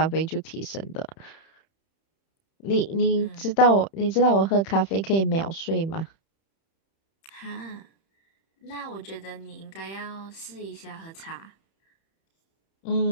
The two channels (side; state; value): right; late; 31 ms